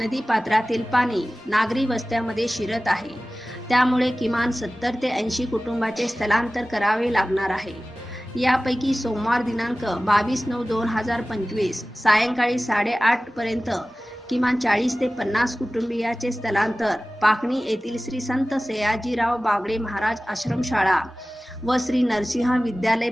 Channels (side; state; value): both; normal; correlation 0.97